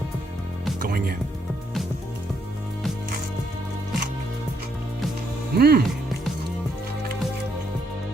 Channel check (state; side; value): normal; both; correlation 0.73